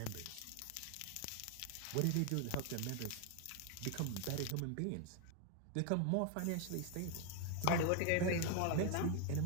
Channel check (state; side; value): different; both; correlation 0.01